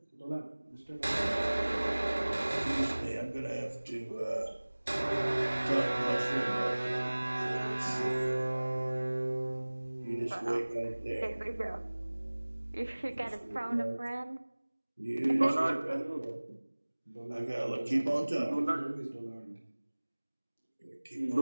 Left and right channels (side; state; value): both; inverted; correlation -1.00